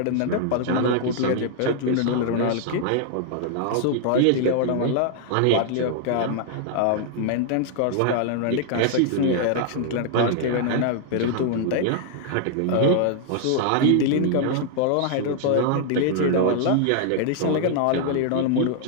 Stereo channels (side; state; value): both; different; correlation -0.01